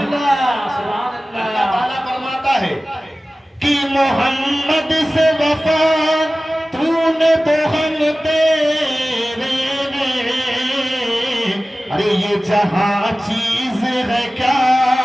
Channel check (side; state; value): both; normal; correlation 0.97